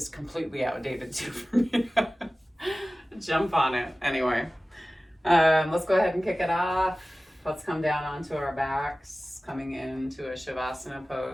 completely outdated too for me to jump on it. Anyway, let's go ahead and kick it off. Let's come down onto our backs, coming into a Shavasana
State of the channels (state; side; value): normal; both; correlation 0.97